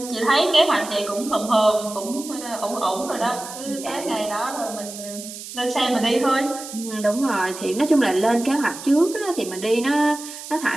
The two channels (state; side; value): noise; right; hiss, 12 dB below the sound